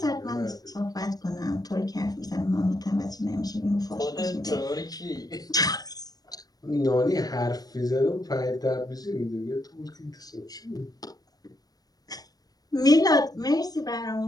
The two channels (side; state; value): right; late; 0.19 ms